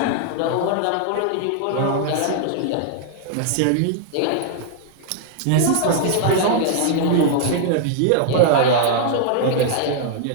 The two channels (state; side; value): different; both; correlation -0.01